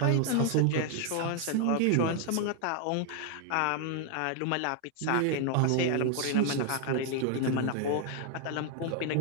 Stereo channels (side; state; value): both; different; correlation 0.00